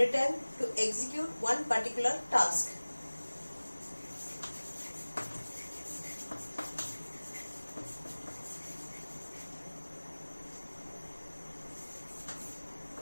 to execute one particular task.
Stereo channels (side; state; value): both; inverted; correlation -1.00